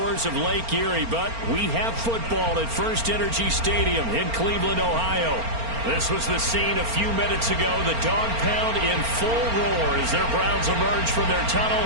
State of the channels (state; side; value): late; left; 4.4 ms